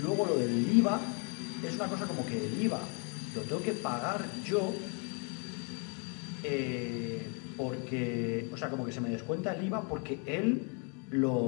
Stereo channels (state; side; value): quieter; right; 37.4 dB